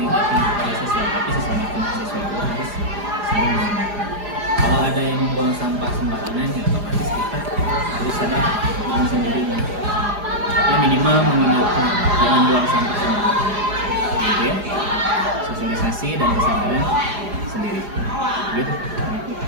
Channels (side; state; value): left; late; 4.9 ms